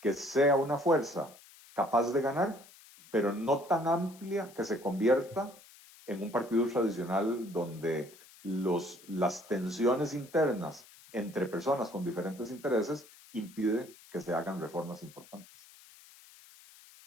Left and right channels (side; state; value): left; noise; hiss, 23 dB below the sound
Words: sea una fuerza capaz de ganar, pero no tan amplia que se convierta en un partido tradicional donde las tensiones internas entre personas con diferentes intereses impide que se hagan reformas importantes.